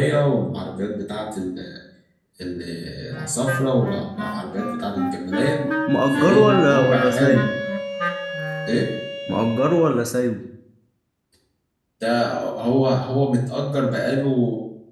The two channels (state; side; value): identical; both; correlation 1.00